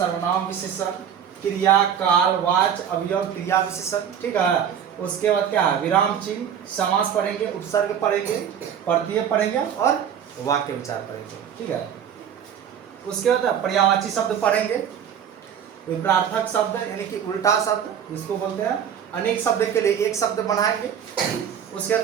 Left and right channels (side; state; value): left; quieter; 8.6 dB